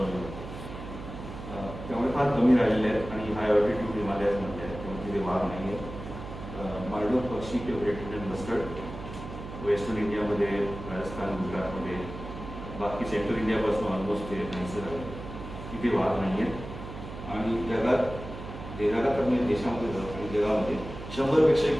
जाते. त्यामुळे फार कमी राहिलेले आहेत. आणि हाय ऑल्टिट्यूड हिमालयाजमध्ये आहेत, त्यामुळे तिथे वाघ नाही आहेत. मार्डो पक्षी किंवा ग्रेट इंडियन मस्टर्ड वेस्टर्न इंडियामध्ये, राजस्थान, गुजरातमध्ये, बाकी सेंट्रल इंडियापासून ऑलमोस्ट ते नाहीसे झाले, तिथे वाघ नाही आहेत. आणि जगात म्हणजे देशामध्ये जातात आणि जगामध्ये 100पेक्षाही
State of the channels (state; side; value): noise; right; hum, 11 dB below the sound